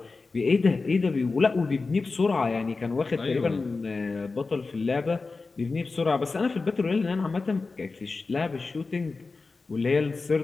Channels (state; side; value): quieter; right; 4.0 dB